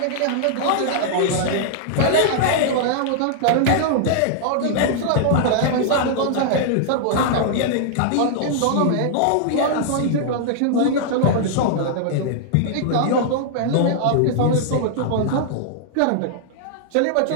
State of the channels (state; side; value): different; both; correlation -0.01